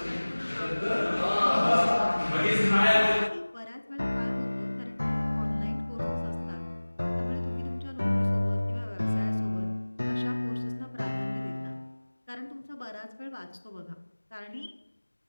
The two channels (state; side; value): inverted; both; correlation -1.00